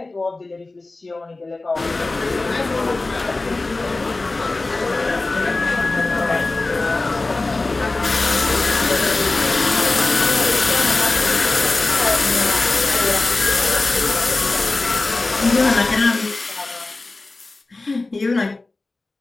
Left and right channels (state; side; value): quieter; right; 3.2 dB